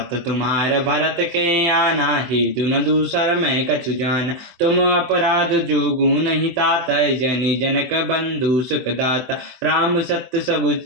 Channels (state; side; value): late; left; 24 ms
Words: तुम्हार भरत के आना, हेतु न दूसर मैं कछु जान। तुम अपराध जोगु नहीं तात, जनि जनक बंधु सुख दाता। राम सत्य सब